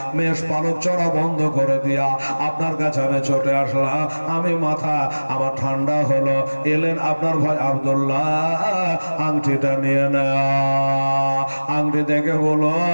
মেষ পালক চড়া বন্ধ করে দিয়া আপনার কাছে আমি ছুটে আসলাম। আমি মাথা আমার ঠান্ডা হলো, এলেন আপনার ভাই আব্দুল্লাহ, আংটিটা নিয়ে না। আংটি দেখে বলো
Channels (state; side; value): inverted; both; correlation -1.00